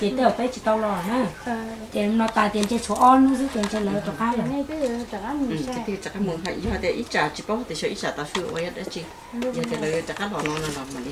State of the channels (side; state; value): both; identical; correlation 1.00